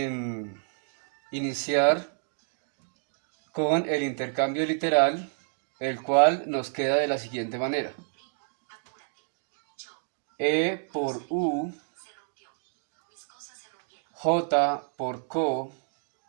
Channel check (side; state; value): left; silent; 57 dB below the other